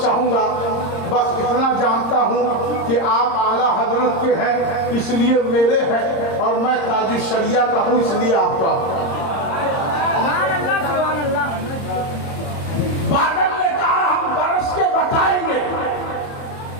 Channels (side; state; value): right; late; 30 ms